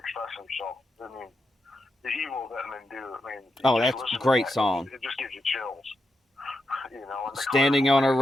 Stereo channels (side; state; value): both; normal; correlation 0.86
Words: himself. I mean, the Evil that Men Do. I mean, that's a great song. It just gives you chills. Standing on a